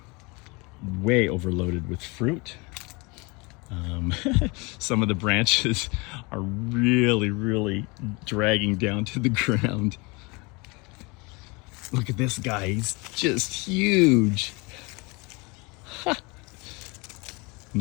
way overloaded with fruit. Some of the branches are really dragging down to the ground. Look at this guy, he's just huge. Ha.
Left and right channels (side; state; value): right; quieter; 27.4 dB